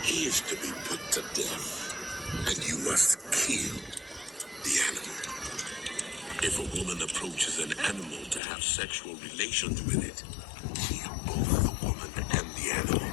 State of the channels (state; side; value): drops out; right; at 8.4 s